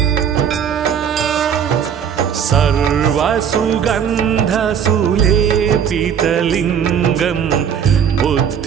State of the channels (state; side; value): quieter; left; 8.0 dB